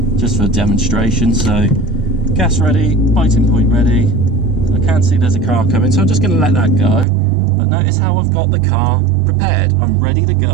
just for a demonstration. So gas ready, biting point ready. So I can see there's a car coming, so I'm just going to let that go. But notice how I've got the car prepared. I'm ready to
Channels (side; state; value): left; drops out; at 7.1 s